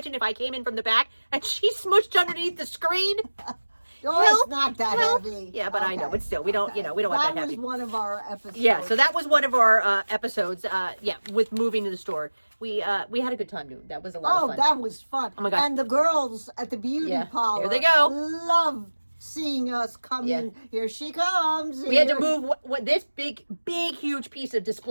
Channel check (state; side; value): inverted; both; correlation -1.00